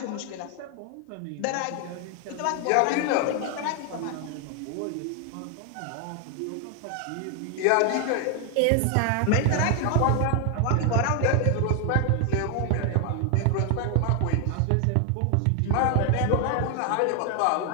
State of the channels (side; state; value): both; different; correlation 0.00